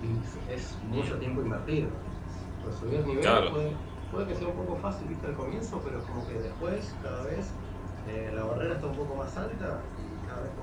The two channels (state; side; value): identical; both; correlation 1.00